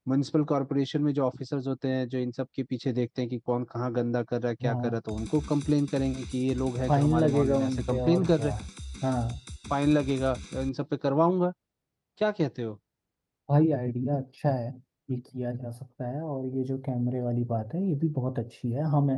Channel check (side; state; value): both; identical; correlation 1.00